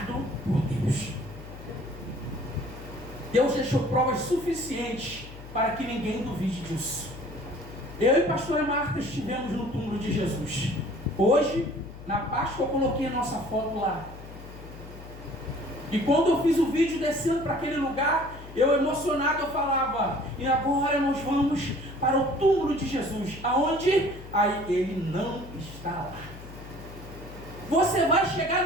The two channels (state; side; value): noise; left; hum, 15 dB below the sound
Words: por Deus. Deus deixou provas suficientes para que ninguém duvide disso. Eu e a pastora Marta estivemos no túmulo de Jesus. Hoje, na Páscoa, eu coloquei a nossa foto lá. E quando eu fiz o vídeo descendo para aquele lugar, eu emocionado, eu falava, e agora nós vamos para o túmulo de Jesus. Aonde? Aí ele não está lá. Você vai chegar